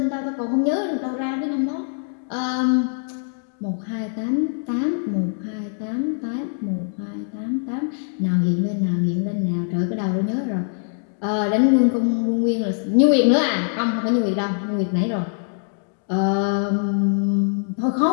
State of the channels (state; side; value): silent; right; 64 dB below the other